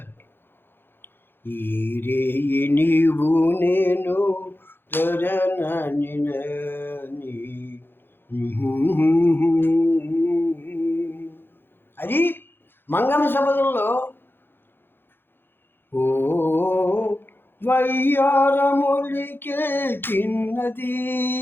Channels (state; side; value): late; right; 0.10 ms